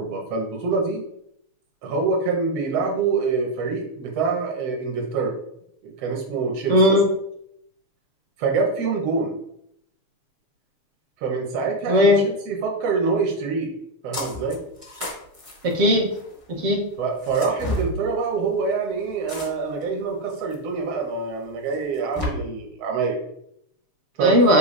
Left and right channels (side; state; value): left; late; 6.3 ms